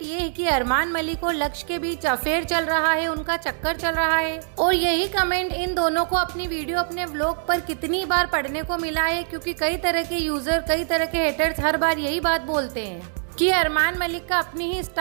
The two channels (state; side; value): silent; left; digital silence